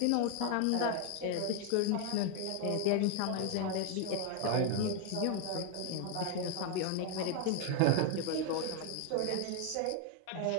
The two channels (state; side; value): different; both; correlation 0.01